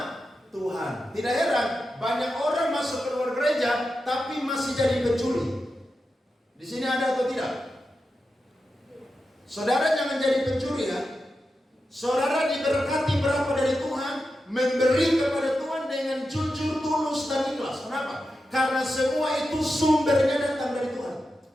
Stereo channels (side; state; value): both; normal; correlation 0.90